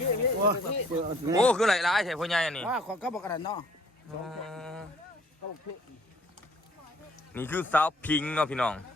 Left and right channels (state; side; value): normal; both; correlation 0.58